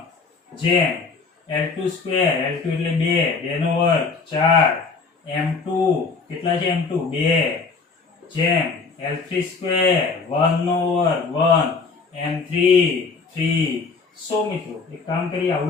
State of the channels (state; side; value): quieter; right; 4.6 dB